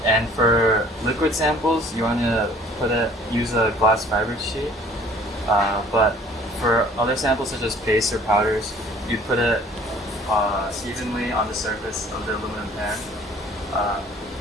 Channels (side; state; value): both; normal; correlation 0.53